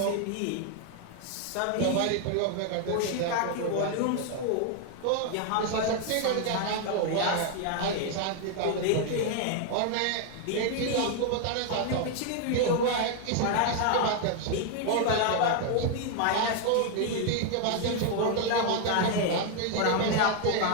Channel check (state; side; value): different; both; correlation 0.00